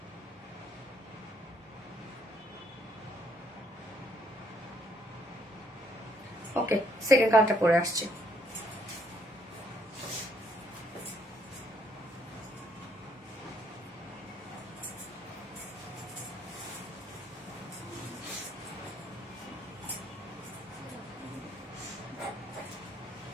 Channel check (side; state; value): both; normal; correlation 0.69